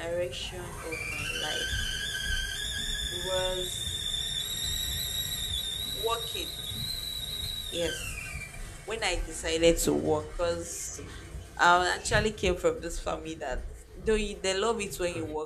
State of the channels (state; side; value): identical; both; correlation 1.00